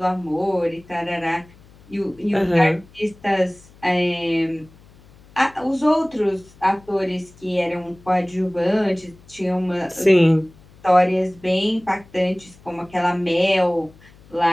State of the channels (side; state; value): left; noise; hum, 26 dB below the sound